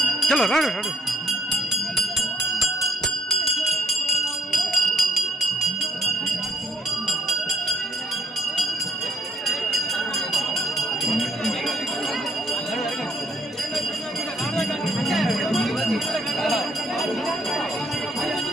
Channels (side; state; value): both; normal; correlation 0.70